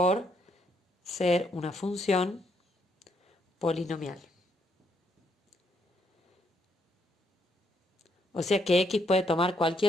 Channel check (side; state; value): both; normal; correlation 0.74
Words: ser una función polinomial. O sea que x puede tomar